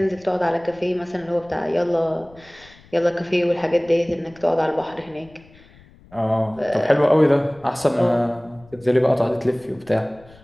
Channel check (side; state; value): left; noise; rumble, 26 dB below the sound